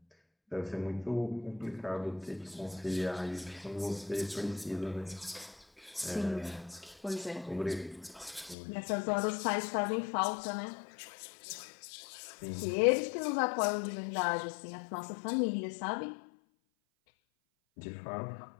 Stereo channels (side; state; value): right; drops out; at 8.6 s